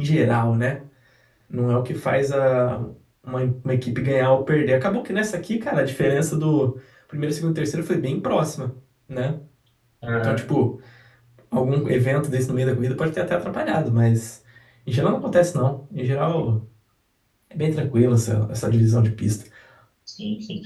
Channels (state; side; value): identical; both; correlation 1.00